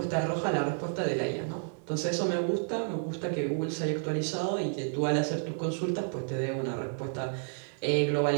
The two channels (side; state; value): left; silent; digital silence